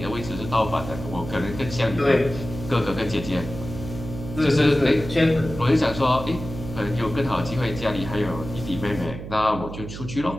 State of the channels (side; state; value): right; noise; hum, 10 dB below the sound